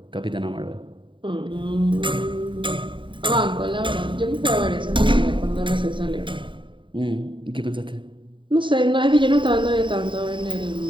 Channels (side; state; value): left; late; 0.24 ms